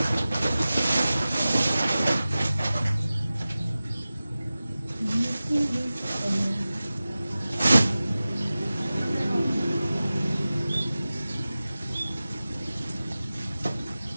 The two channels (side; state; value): both; inverted; correlation -0.96